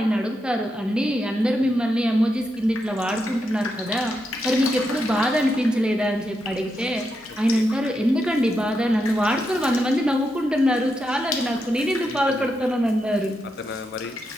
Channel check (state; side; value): normal; both; correlation 0.84